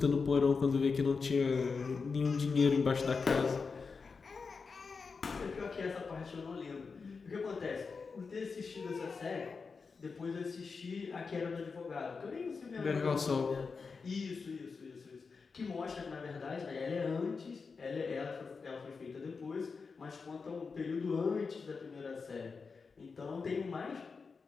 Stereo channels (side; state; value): right; quieter; 4.9 dB